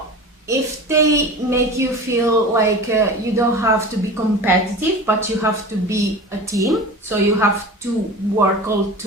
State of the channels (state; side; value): normal; both; correlation 0.34